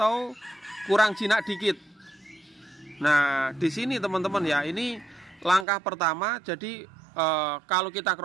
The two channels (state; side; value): drops out; left; at 5.7 s